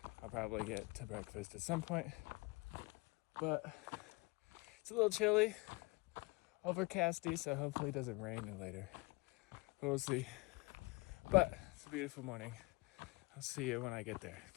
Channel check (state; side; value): quieter; right; 25.4 dB